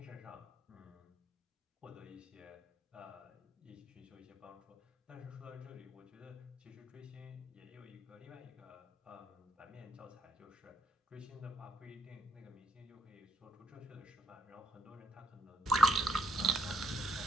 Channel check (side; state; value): both; normal; correlation 0.71